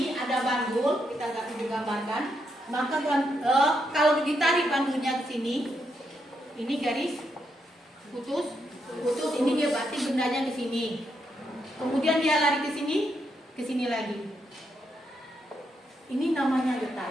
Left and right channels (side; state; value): both; normal; correlation 0.80